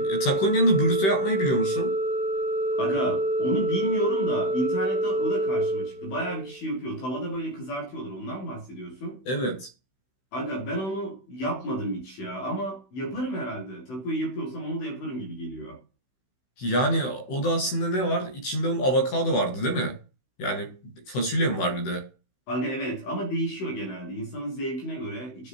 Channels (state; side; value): late; right; 16 ms